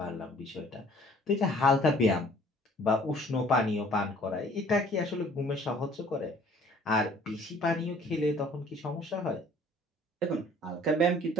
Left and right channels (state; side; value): normal; both; correlation 0.54